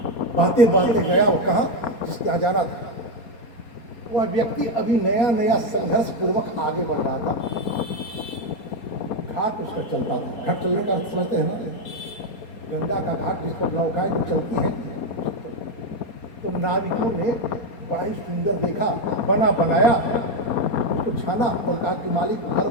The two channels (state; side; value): late; right; 4.3 ms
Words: बातें बातें गया। वो कहाँ जिसके यहाँ जाना था, वह व्यक्ति अभी नया नया संघर्ष पूर्वक आगे बढ़ रहा था। घाट उसका चलता था। घाट चलने का अर्थ समझते हैं ना, गंगा का घाट जिस पर नौकाएं जो चलती हैं। तो नाविकों ने बड़ा ही सुंदर देखा, बना बनाया, उसको छाना और कहा कि मालिक घर